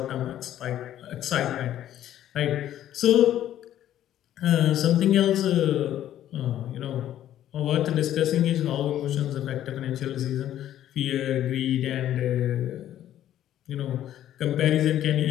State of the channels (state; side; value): quieter; right; 11.9 dB